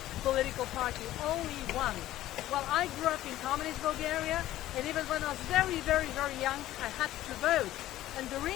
political party, only one. Well, I grew up in communist Bulgaria, and even when I was very, very, very young, I had to vote. And the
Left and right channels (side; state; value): right; quieter; 14.4 dB